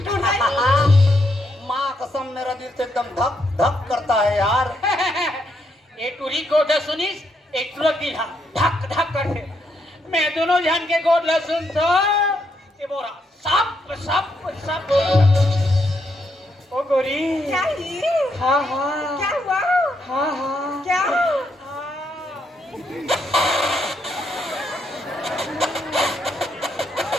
टूट गई। माँ कसम मेरा दिल तो एकदम धक धक करता है यार। ये टूरी गोद सुनीस, एक तुरंत दिल हम धक धक करते। मैं दोनों जान के गोद लसुन तो ये बोरा सब सब सब। ओ गोरी। क्या ही? हाँ हाँ। क्या हुआ? हाँ हाँ। क्या?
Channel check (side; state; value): both; normal; correlation 0.77